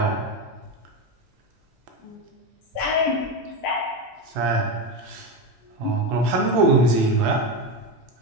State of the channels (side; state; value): both; normal; correlation 0.16